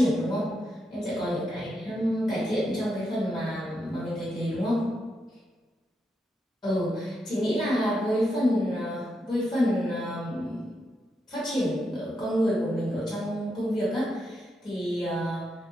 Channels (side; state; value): both; normal; correlation 0.83